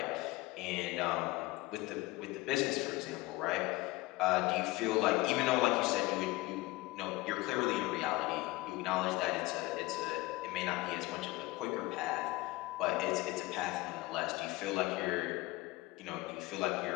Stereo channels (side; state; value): right; quieter; 19.8 dB